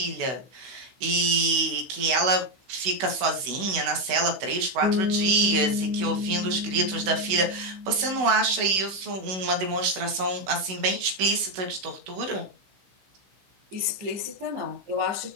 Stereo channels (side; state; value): left; late; 16 ms